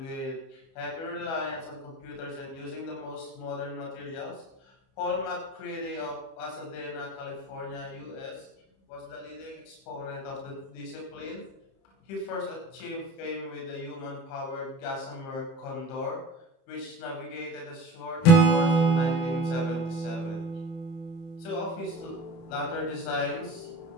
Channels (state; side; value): late; right; 30 ms